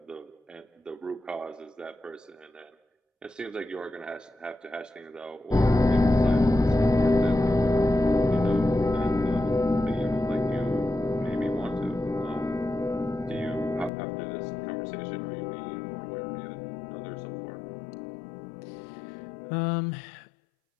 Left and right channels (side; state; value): right; drops out; at 13.9 s